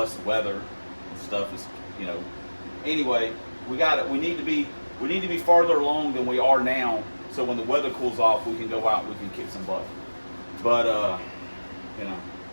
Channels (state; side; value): inverted; both; correlation -1.00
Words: the weather and stuff is, you know. Anyway, we need to be farther along than we are now, so when the weather cools off, we can go out and we can kick some butt. But you know,